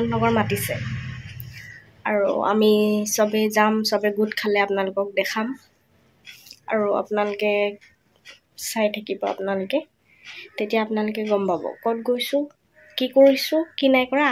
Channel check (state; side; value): identical; both; correlation 1.00